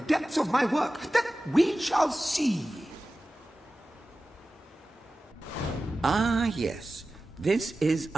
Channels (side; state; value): both; normal; correlation 0.95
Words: of my work? That we shall see. Ah, yes. This is